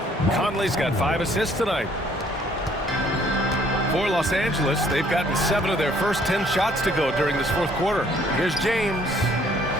Conley's got 5 assists tonight. For Los Angeles, they've gotten 7 of their first 10 shots to go during this 4th quarter. Here's James.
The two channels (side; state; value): both; normal; correlation 0.61